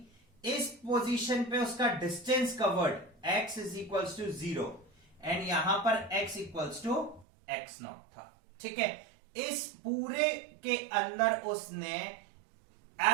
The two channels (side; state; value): left; drops out; at 7.2 s